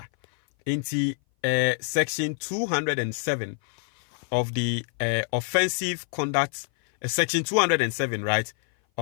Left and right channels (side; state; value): right; silent; 58 dB below the other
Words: enti section 207 of the offensive conduct section 207 right